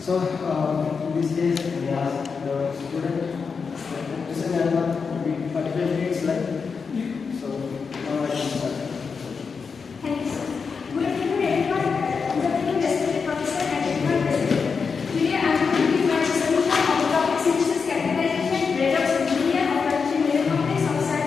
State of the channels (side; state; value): right; quieter; 5.4 dB